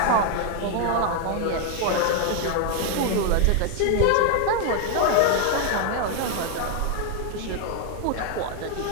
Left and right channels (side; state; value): both; different; correlation 0.00